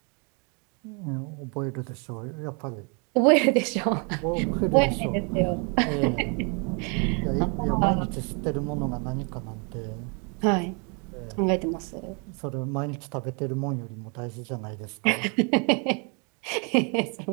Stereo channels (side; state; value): left; quieter; 35.2 dB